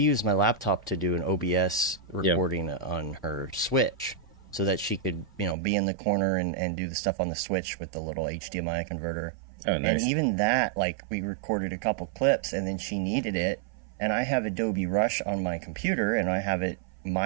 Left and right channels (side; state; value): left; drops out; at 5.6 s